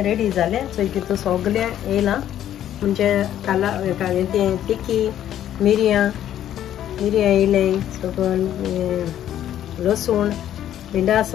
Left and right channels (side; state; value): right; quieter; 11.3 dB